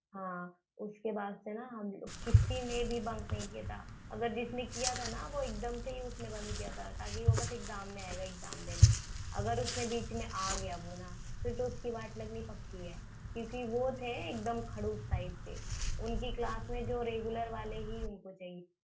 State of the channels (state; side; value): identical; both; correlation 1.00